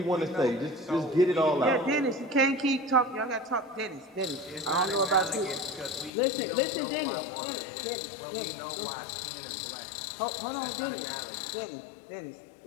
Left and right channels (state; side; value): drops out; right; at 6.1 s